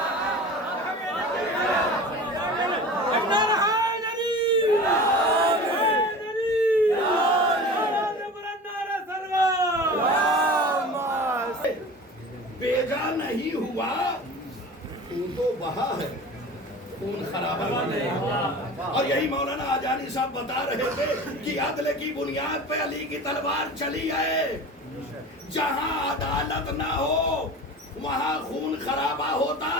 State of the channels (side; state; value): both; normal; correlation 0.36